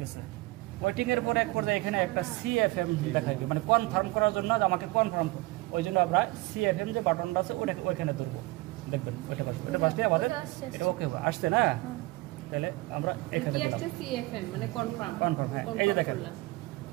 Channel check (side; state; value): left; quieter; 21.5 dB